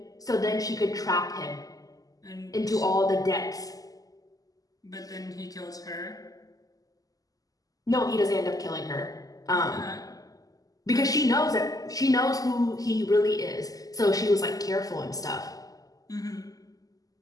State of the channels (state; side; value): late; right; 0.17 ms